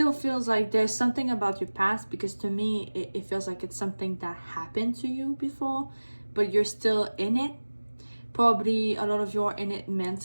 feels like there's something about your past, because to me it feels like it's something that happened to you before, but you're still in it. Probably a lot of you are in it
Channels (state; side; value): inverted; both; correlation -1.00